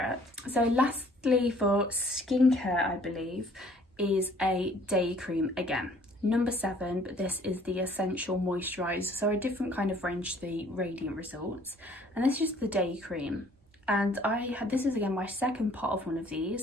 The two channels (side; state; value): both; normal; correlation 0.57